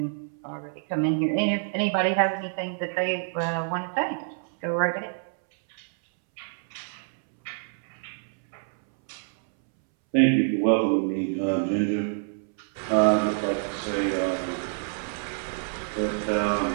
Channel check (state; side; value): silent; left; 60 dB below the other